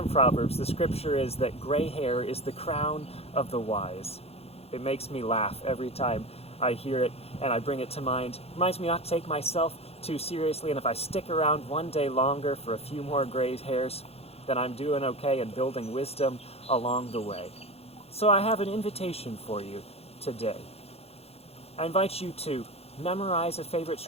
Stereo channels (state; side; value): late; right; 0.29 ms